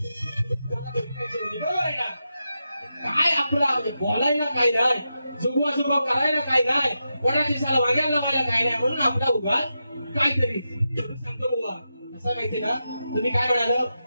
बरोबर आहे ना. काय आपला बोलायला काय नाही, जुगवा करायला काय नाही, कोणाची साला वाग्याला लावायला काय नाही, म्हणून आपला उगाच काहीतरी सांगतो बुवा. असं माहिती ना, तुम्ही काय म्हणाल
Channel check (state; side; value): inverted; both; correlation -0.88